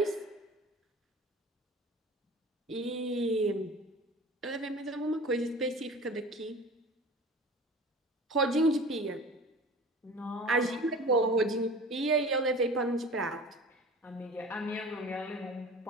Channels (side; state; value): both; normal; correlation 0.39